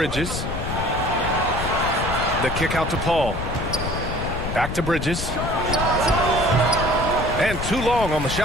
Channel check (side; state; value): left; noise; rumble, 5 dB below the sound